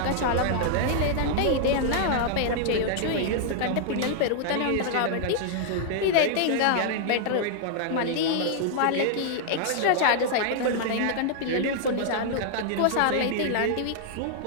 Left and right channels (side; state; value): both; different; correlation -0.01